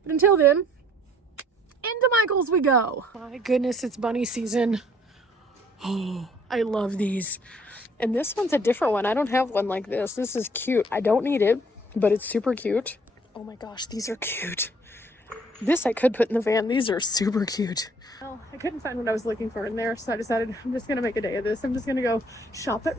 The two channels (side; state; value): both; normal; correlation 0.59